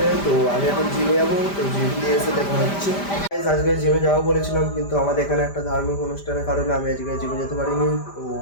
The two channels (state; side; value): late; right; 5.0 ms